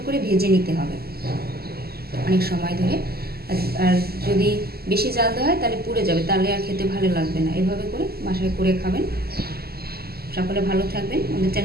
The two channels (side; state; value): left; late; 0.45 ms